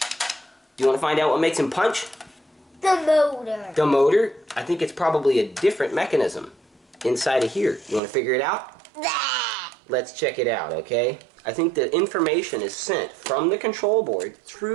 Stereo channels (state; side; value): drops out; left; at 8.0 s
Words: Do you want to find out what makes him punch? The motor. The motor? I think it's probably a different mechanism inside of here. You want to figure it out? Let's check it out, okay? I think the information is sent from the control board